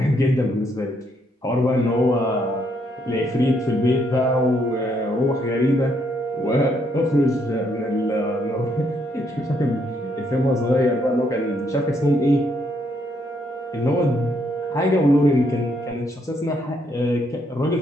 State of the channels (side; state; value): both; normal; correlation 0.73